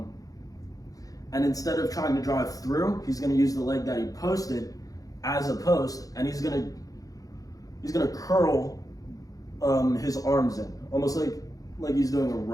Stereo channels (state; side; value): late; right; 0.17 ms